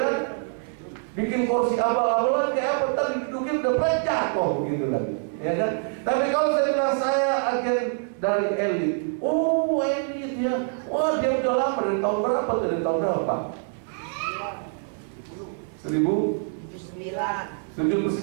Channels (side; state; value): left; silent; 62 dB below the other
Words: Bikin kursi abal-abalan kayak apa? Tadi didudukin udah jatuh begitu lagi, ya kan? Tapi kalau saya bilang saya agen dari elit, oh elit ya, wah dia udah lama, dari tahun berapa? Dari tahun berapa?